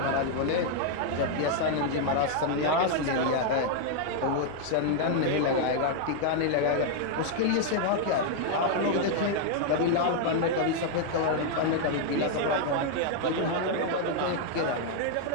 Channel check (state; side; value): different; both; correlation 0.00